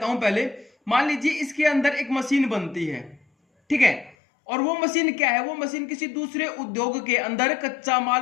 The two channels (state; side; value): drops out; right; at 4.2 s